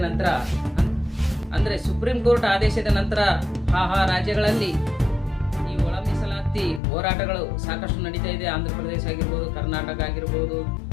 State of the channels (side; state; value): right; drops out; at 6.8 s